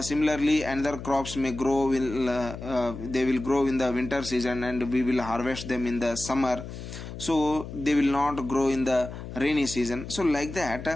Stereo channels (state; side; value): noise; left; hum, 10 dB below the sound